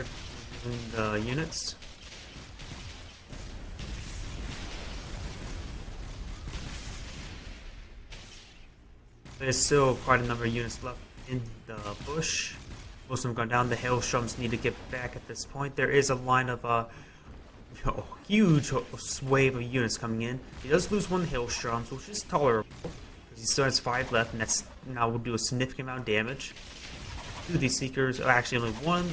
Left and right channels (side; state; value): both; identical; correlation 1.00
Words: removing the units. There's still quite a number of units left in the bush. Most of them gone down. The hailstorms need to get back at this point. There is a line of a huge wave of units coming in. He does lose 1 hailstorms, which is tolerable. He still has 5 left, and that's now will do a significant amount of damage. 2 of these seekers, actually only